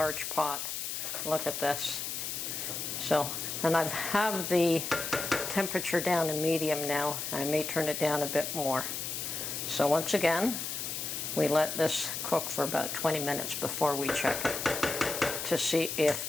pot. Look at this. So, and I have the temperature down to medium now. I may turn it down a bit more. So once again, we let this cook for about 20 minutes before we check it to see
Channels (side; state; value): left; noise; hiss, 4 dB below the sound